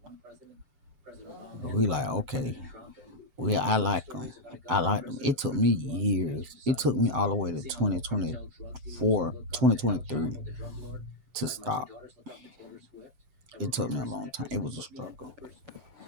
But we like, okay, I like them. I like them. It took me years. It took me all the way to 2024, 2023 to stop. It took me a long time. It was a struggle.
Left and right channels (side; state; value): left; late; 6.9 ms